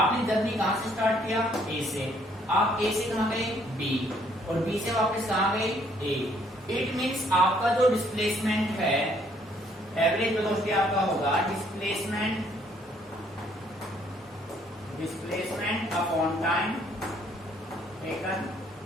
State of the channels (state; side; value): normal; both; correlation 0.65